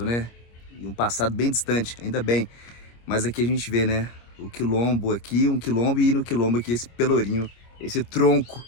né? E um passado bem distante, ainda bem. Mas aqui a gente vê, né, o quilombo aqui, um quilombo, e no quilombo aqui esse pelourinho, esse tronco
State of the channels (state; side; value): late; right; 25 ms